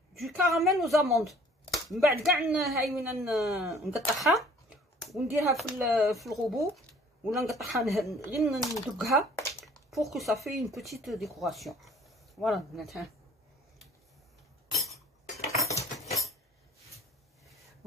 du caramel aux amandes. من بعد كاع هاي وين نقطعها ونديرها في الغوبو ولا نقطعها غير ندقها pour que ça fait une petite décoration. voilà البنات. ها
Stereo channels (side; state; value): both; normal; correlation 0.53